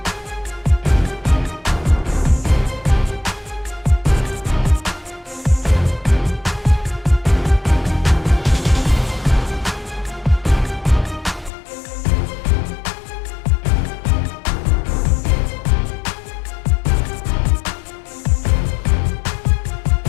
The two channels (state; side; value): drops out; right; at 11.5 s